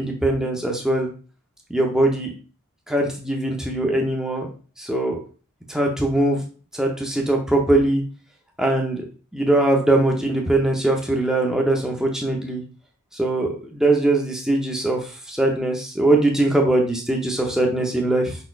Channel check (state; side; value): normal; both; correlation 0.71